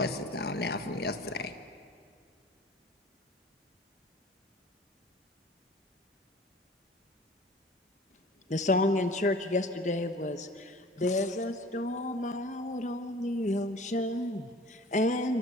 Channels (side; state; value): both; normal; correlation 0.44